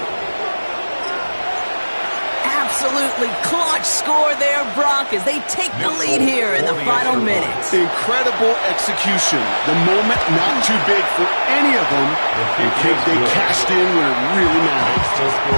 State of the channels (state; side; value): inverted; both; correlation -1.00